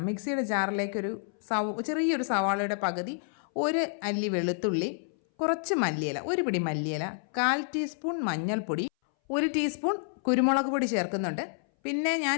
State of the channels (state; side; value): silent; right; 58 dB below the other